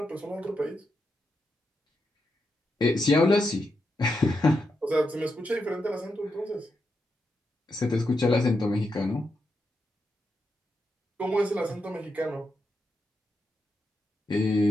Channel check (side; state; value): both; normal; correlation 0.85